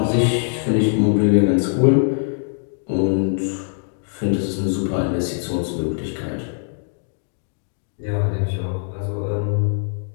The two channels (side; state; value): right; silent; digital silence